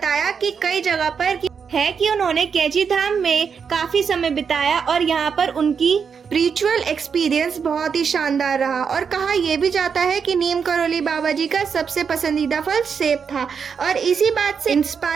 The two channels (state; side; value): quieter; left; 6.4 dB